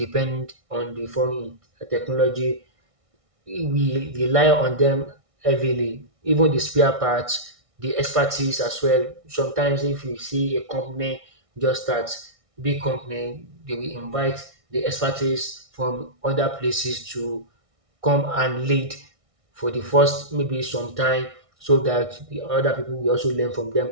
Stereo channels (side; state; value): left; late; 1.6 ms